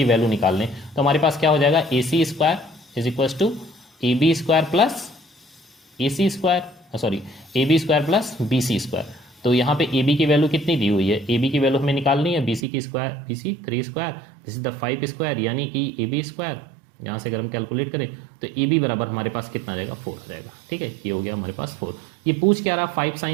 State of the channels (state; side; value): drops out; left; at 12.7 s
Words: वैल्यू निकाल लें, तो हमारे पास क्या हो जाएगा AC² is equals to AB² plus AB² plus BC²। तो यहाँ पे AB की वैल्यू कितनी दी हुई है, AB की वैल्यू हमें निकालनी है BC 3², दिस इज द 5², यानी कि AB², यहाँ से अगर हम कैलकुलेट करें तो AB बराबर हमारे पास कितना आ जाएगा 4 आ जाएगा, ठीक है। ये हो गया हमारे पास 4। ये पूछ क्या रहा 5